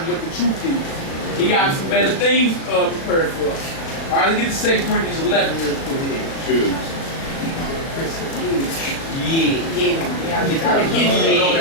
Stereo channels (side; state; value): right; late; 36 ms